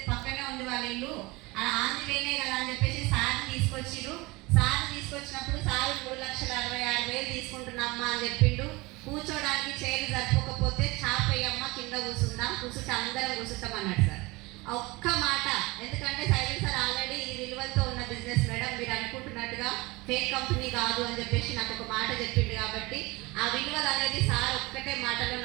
పక్కనే ఉంది వాళ్ళ ఇల్లు, ఆంధ్రవేనే కదా అని చెప్పేసి సార్ని తీసుకొచ్చిరు. సార్ని తీసుకొచ్చినప్పుడు సారు 3,66,000 తీసుకుంటున్నామ్మా అని చెప్పిండు. కూర్చోడానికి చైర్లు సరిపోకపోతే చాపయ్యమ్మ కింద కూర్చుందాం, కూర్చుంటే అందరం కూర్చుంటాం అన్నాడు సార్. ఒక్క మాట. ఎందుకంటే సైలెంట్ సార్ ఆల్రెడీ ఈ విలువలతో ఉన్న బిజినెస్ మేడం, మీరు అనుకుంటున్నట్టుగా ఫేక్ కంపెనీ కాదు అని చెప్పేసి నాకు ఒక మాట చెప్పిండు. కాబట్టి ఆ విలువలు అనేది సార్ ఒక్కటే మాటలో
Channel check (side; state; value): left; quieter; 23.1 dB